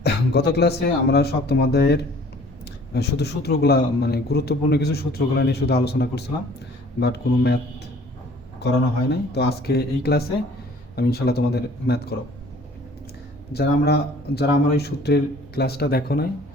গত ক্লাসে আমরা সপ্তম অধ্যায়ের শুধু সূত্রগুলা মানে গুরুত্বপূর্ণ কিছু সূত্রগুলা নিয়ে শুধু আলোচনা করছিলাম, বাট কোনো ম্যাথ করানো হয় নাই। তো আজকে এই ক্লাসে আমি ইনশাল্লাহ তোমাদের ম্যাথ করাবো। যারা আমার ওই সূত্রের ক্লাসটা দেখো নাই,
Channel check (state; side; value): normal; both; correlation 0.53